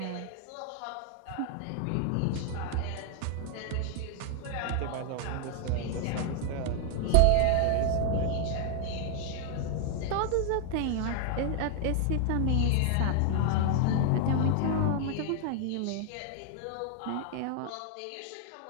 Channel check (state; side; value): different; both; correlation 0.00